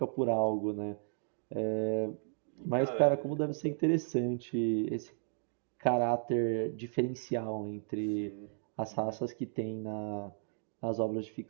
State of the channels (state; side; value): silent; left; digital silence